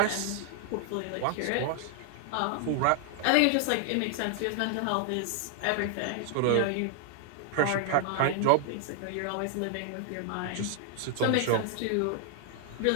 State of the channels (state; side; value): different; both; correlation 0.00